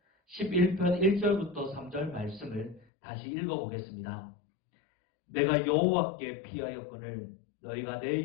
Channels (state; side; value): drops out; right; at 2.9 s